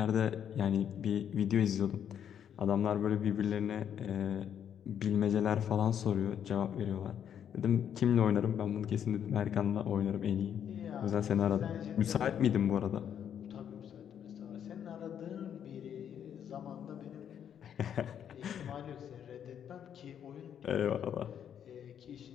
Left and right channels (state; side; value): quieter; right; 9.0 dB